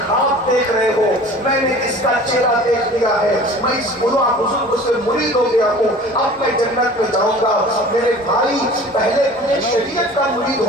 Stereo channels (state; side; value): normal; both; correlation 0.44